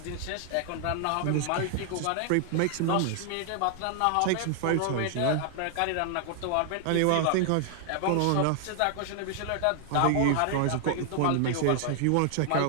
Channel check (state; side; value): different; both; correlation 0.00